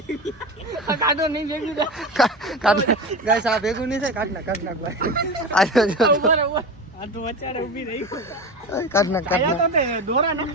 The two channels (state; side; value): normal; both; correlation 0.25